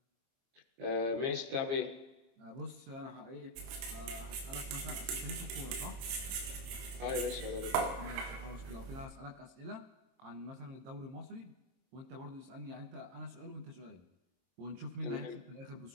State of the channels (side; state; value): left; late; 22 ms